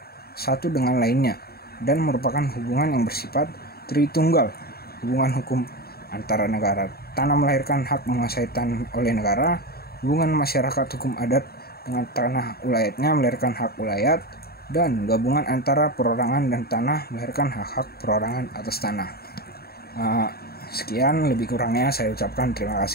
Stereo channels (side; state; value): right; late; 0.45 ms